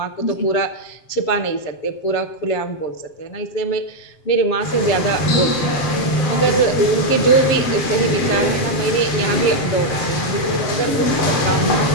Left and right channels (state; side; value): late; right; 7.4 ms